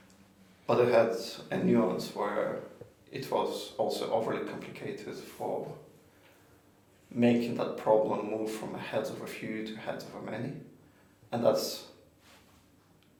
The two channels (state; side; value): identical; both; correlation 1.00